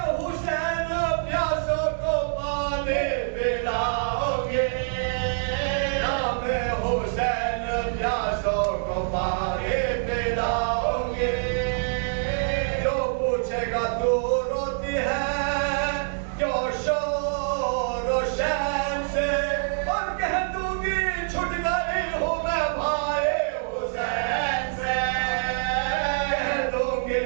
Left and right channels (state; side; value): silent; left; digital silence